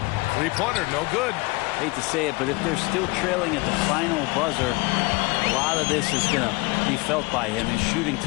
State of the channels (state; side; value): quieter; right; 25.3 dB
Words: 3-pointer, no good. Hate to say it, but if they're still trailing at the final buzzer, a lot of this is going to be felt by him. His shooting